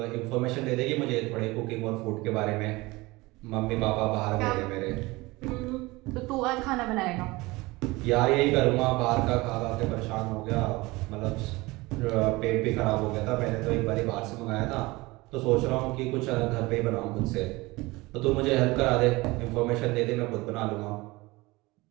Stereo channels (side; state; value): left; quieter; 21.9 dB